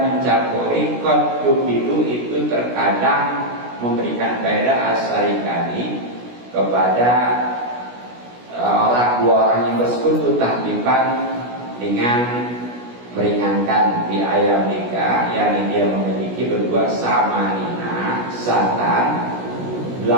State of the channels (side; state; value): left; late; 16 ms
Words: mencampuri qad tubidu itu terkadang memberikan faedah asarikani kepada dua orang yang bersekutu tahdipan dengan meringankan di ayam nikah, yakni dia memiliki berdua samanina satan